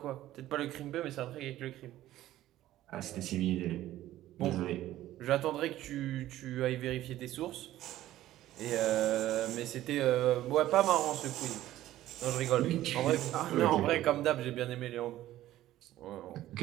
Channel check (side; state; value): left; quieter; 14.3 dB